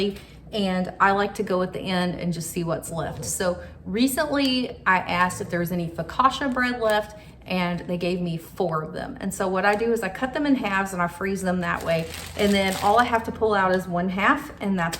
and I like to go at the end and just see what's left. So recently I asked if there was any focaccia bread left, and they gave me 4 of them. And so what I do is I cut them in halves and I freeze them that way. And then all I have to pull out is 1/2, and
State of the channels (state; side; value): identical; both; correlation 1.00